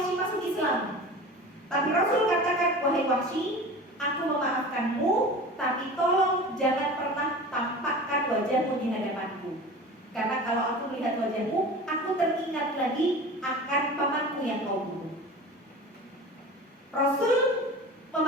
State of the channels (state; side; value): normal; both; correlation 0.36